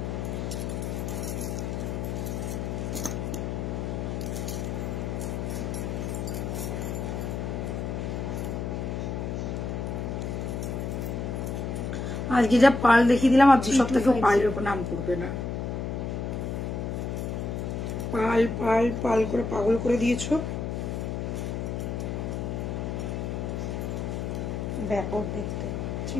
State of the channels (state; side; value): noise; left; hum, 3 dB below the sound